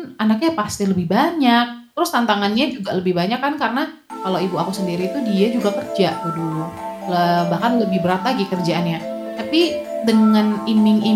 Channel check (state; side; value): identical; both; correlation 1.00